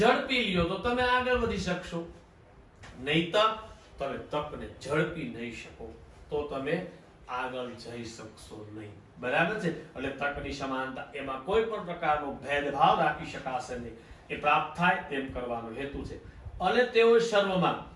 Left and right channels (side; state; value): both; identical; correlation 1.00